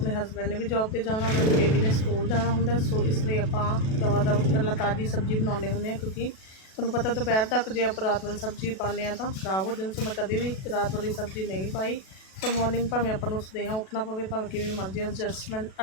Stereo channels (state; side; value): late; right; 37 ms